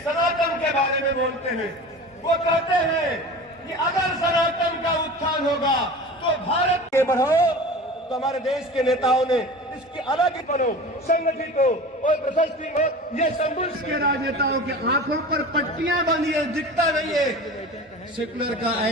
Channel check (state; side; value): normal; both; correlation 0.35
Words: के बारे में बोलते हैं। वो कहते हैं कि अगर सनातन का उत्थान होगा तो भारत के बढ़ो, तो हमारे देश के नेताओं ने इसकी अलग ही बनो, संगठित हो और प्रशस्ति हो। ये संबुल्स के राजनेताओं के आंखों पर पट्टियां बंधी है, दिखता नहीं है। सेकुलर का